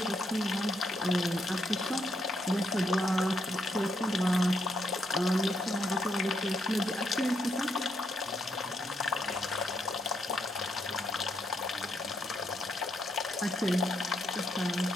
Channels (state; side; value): normal; both; correlation 0.77